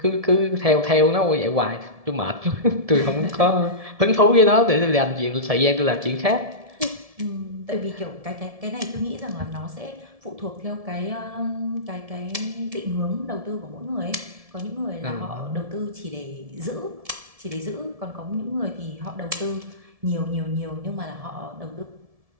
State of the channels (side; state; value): left; late; 1.7 ms